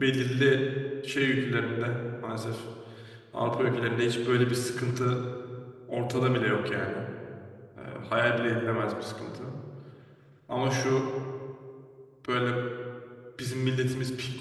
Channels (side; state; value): both; identical; correlation 1.00